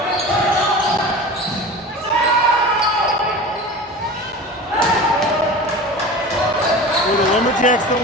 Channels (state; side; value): normal; both; correlation 0.34